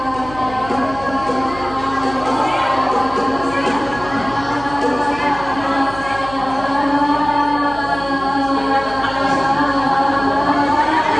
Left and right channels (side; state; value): right; noise; hum, 15 dB below the sound